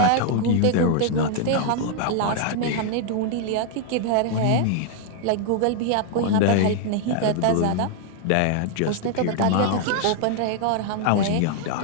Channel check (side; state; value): both; different; correlation 0.00